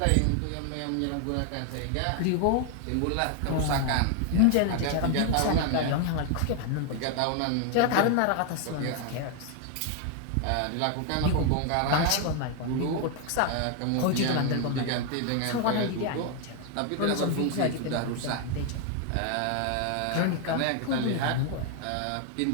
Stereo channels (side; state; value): both; different; correlation 0.00